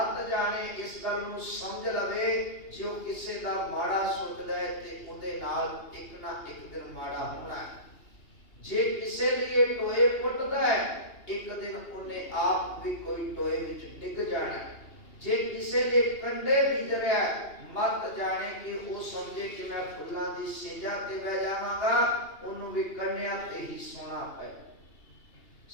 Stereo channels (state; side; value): late; right; 2.8 ms